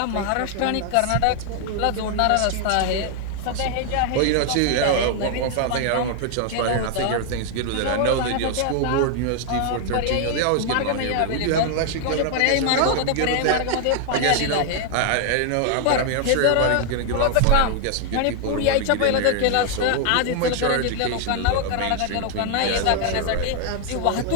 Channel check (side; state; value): both; different; correlation 0.00